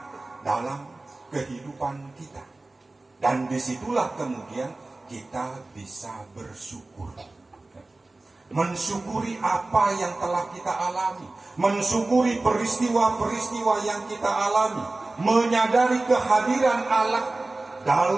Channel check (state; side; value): quieter; left; 3.0 dB